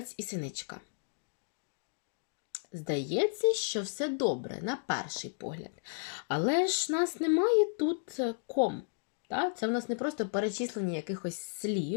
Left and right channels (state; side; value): silent; right; digital silence